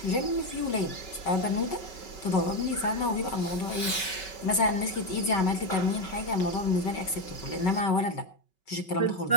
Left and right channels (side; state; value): right; late; 5.3 ms